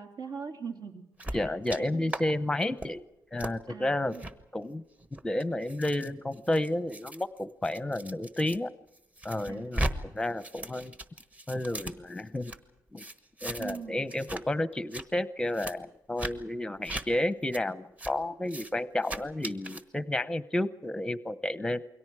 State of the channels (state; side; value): normal; both; correlation 0.90